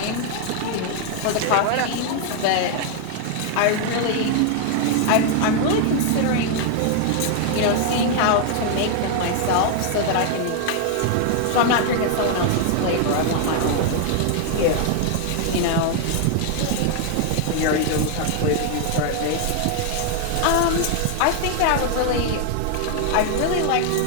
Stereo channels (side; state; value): both; different; correlation 0.00